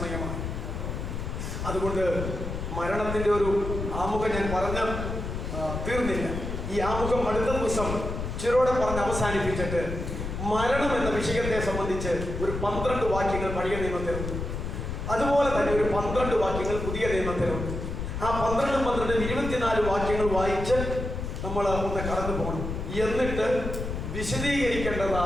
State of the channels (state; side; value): noise; left; rumble, 5 dB below the sound